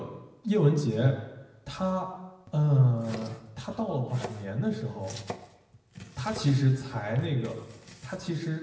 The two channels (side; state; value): both; identical; correlation 1.00